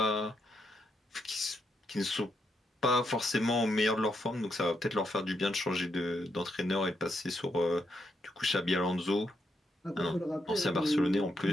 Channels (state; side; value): normal; both; correlation 0.80